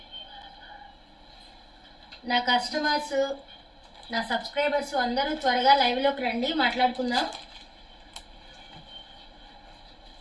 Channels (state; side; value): identical; both; correlation 1.00